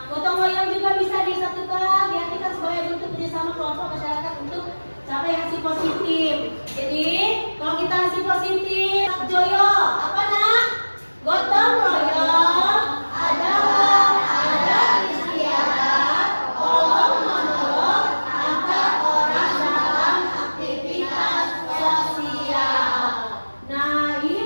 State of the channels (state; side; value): inverted; both; correlation -1.00